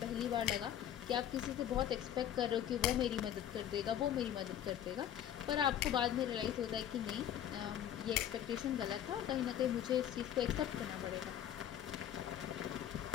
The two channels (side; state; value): right; quieter; 10.5 dB